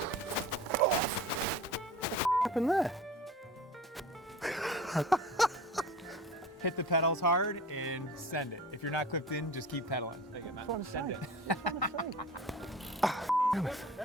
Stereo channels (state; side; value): normal; both; correlation 0.38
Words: happened there? Hit the pedals hard and send it. If you're not clipped in, just keep pedaling. Take it, Matt. Send it.